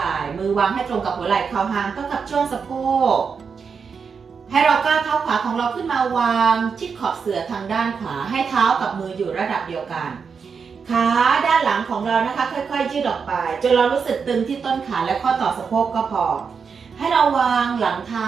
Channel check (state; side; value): quieter; left; 5.9 dB